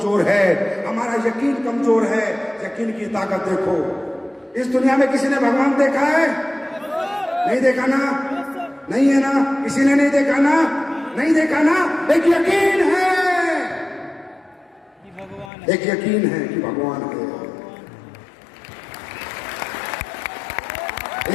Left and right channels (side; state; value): right; drops out; at 15.5 s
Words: है, हमारा यकीन कमजोर है। यकीन की ताकत देखो। इस दुनिया में किसी ने भगवान देखा है? नहीं देखा ना? नहीं है ना? किसी ने नहीं देखा ना? नहीं देखा ना? एक यकीन है, एक यकीन है कि भगवान है।